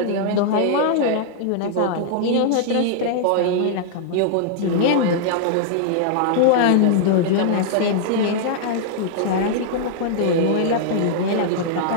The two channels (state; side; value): different; both; correlation -0.01